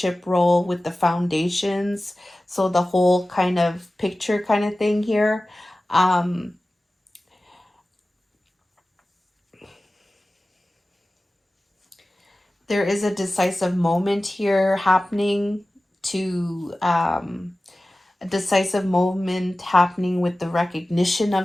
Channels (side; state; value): both; normal; correlation 0.96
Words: role with the foundations. So the whole kind of picture kind of thing here. Um, there is a decisive moment here happening to a decisive moment happening with the recognition